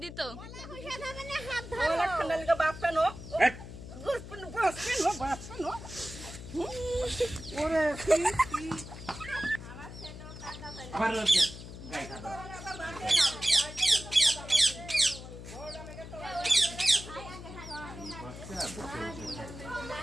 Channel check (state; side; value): noise; left; hum, 12 dB below the sound